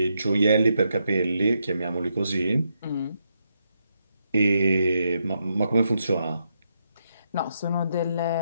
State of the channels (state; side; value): inverted; both; correlation -0.81